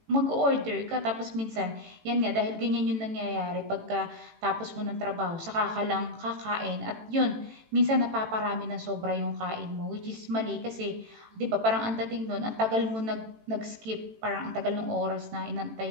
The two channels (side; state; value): left; late; 18 ms